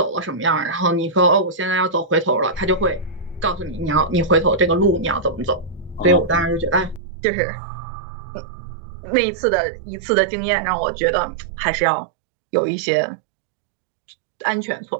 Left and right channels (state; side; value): drops out; left; at 7.0 s